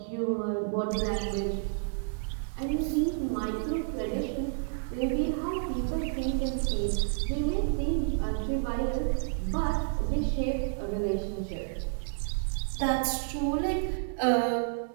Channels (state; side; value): silent; left; digital silence